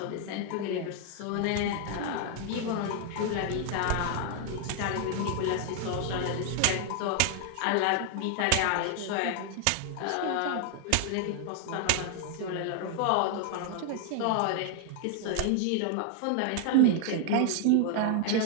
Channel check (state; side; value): different; both; correlation 0.00